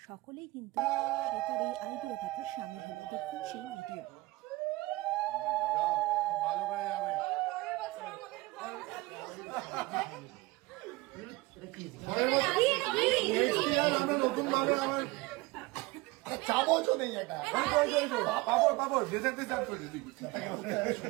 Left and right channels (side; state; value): left; quieter; 21.4 dB